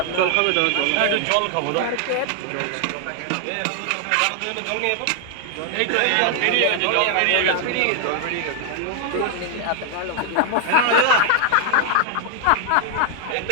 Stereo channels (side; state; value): both; different; correlation 0.00